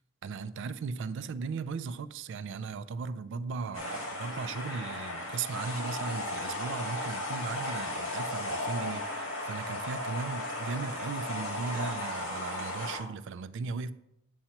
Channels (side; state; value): both; normal; correlation 0.17